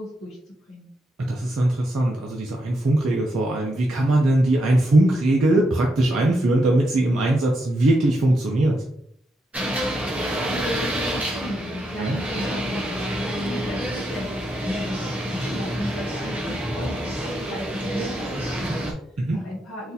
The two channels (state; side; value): normal; both; correlation 0.82